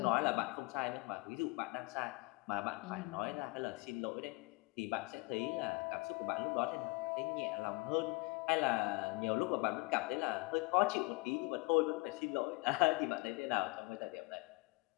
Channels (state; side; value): quieter; right; 25.2 dB